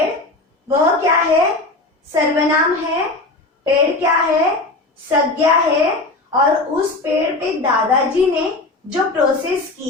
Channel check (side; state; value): right; quieter; 3.1 dB